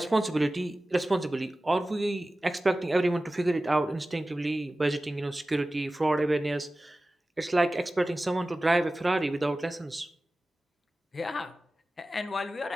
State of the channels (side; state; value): both; normal; correlation 0.96